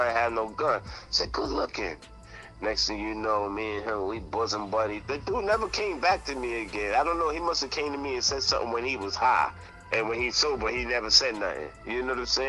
had no gun. I said, good looking. Next thing you know, me and him, we bosom buddies. The dude never came back to me again. I don't know, he must have came to me and said something when he was high. And when he's sober, he never said nothing. You know what I'm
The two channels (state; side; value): identical; both; correlation 1.00